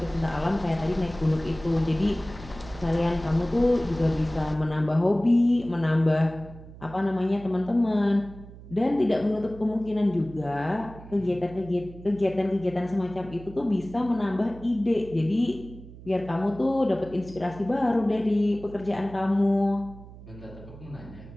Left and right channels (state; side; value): noise; right; hum, 17 dB below the sound